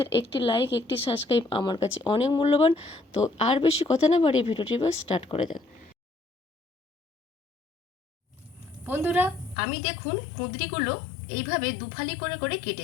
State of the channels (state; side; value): drops out; right; at 9.6 s